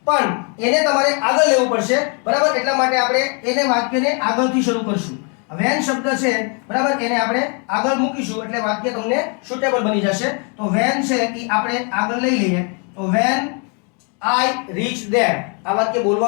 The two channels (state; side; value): quieter; right; 36.8 dB